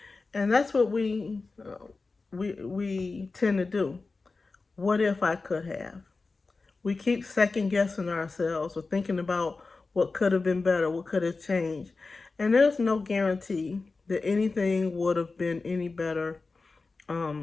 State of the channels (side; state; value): right; quieter; 3.9 dB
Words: and that's what we tend to do. What if I could have? We keep second guessing ourselves or thinking about what could have been better, what could have changed, and there's no guarantee that anything would have been any better.